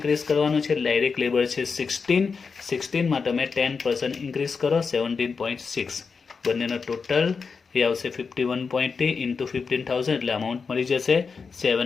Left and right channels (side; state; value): right; quieter; 5.2 dB